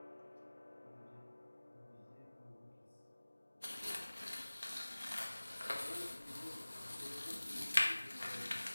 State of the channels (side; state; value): both; inverted; correlation -1.00